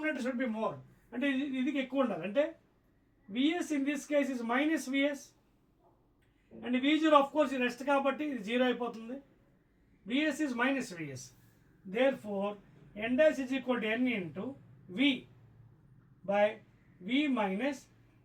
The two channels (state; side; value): identical; both; correlation 1.00